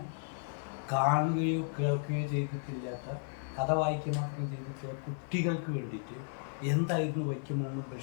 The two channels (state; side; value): silent; right; 55 dB below the other